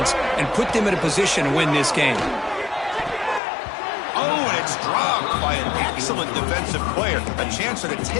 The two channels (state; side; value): drops out; right; at 3.4 s